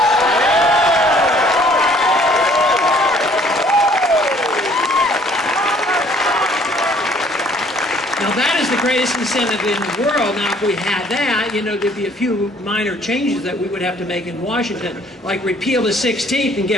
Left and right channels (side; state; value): both; normal; correlation 0.59